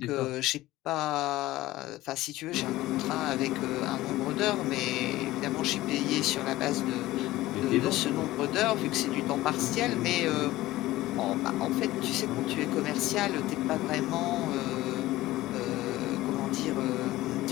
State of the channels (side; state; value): right; quieter; 16.9 dB